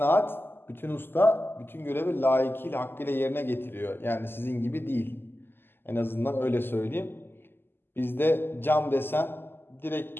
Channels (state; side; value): late; right; 0.10 ms